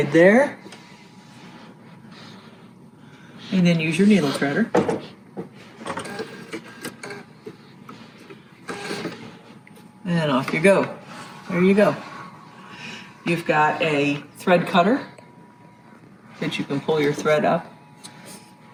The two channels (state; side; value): identical; both; correlation 1.00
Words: there. And then use your needle threader. And off you go. There you go. You've got a thread cutter that you can pull your thread up